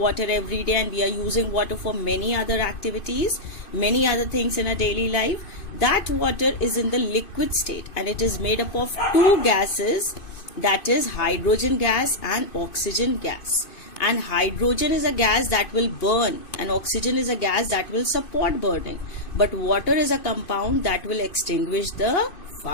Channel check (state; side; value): late; right; 2.5 ms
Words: every day and we are using water for many other activities, many other things in our daily life. That water is in the liquid state and it is made up of two gases, that is hydrogen gas and oxygen gas. And hydrogen is a gas that will burn and oxygen is a gas that will support burning. But water is a compound that will extinguish the